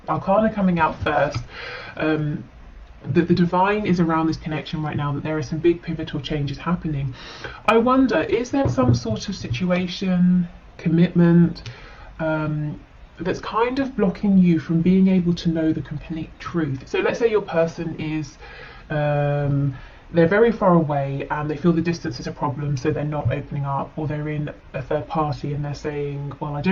arcana coming out first, that the divine is around this connection right now, that there are some big pivotal changes happening. I wonder, is there some sort of situation, commitment, that's kind of blocking you from being able to know the complete truth? So let's say your person is, they're very far away and they feel the distance is a problem, so they're not opening up, or they're in a third party and they're saying, well, I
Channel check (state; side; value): identical; both; correlation 1.00